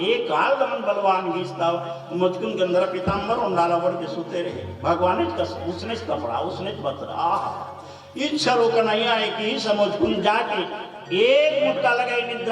एक काल दमन बलवान गीसता मुचकुंद गंधर पीताम्बर उंडाला बढ़ के सुते रहे भगवान उसने कपड़ा उसने बतरा इच्छा रो कन्हैया है कि मुचकुंद जाके एक मुटका लगे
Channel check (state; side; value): identical; both; correlation 1.00